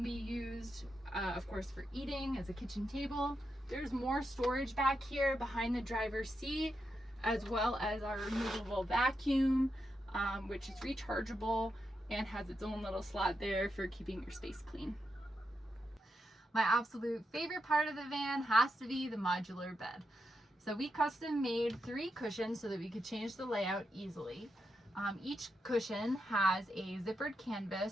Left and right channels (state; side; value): normal; both; correlation 0.85